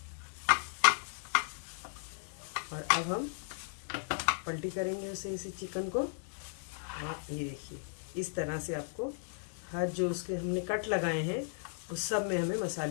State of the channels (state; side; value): silent; right; digital silence